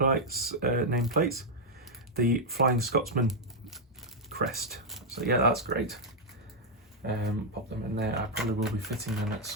the Flying Scotsman crest. So yeah, that's great. Pop them in there. I probably will be fitting them at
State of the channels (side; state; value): both; normal; correlation -0.02